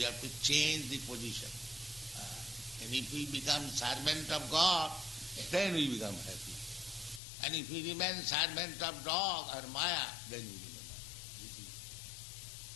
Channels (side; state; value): right; drops out; at 7.2 s